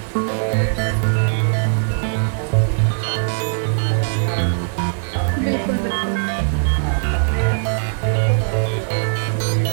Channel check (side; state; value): left; silent; digital silence